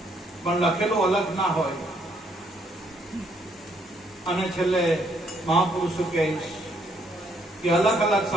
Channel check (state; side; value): normal; both; correlation 0.70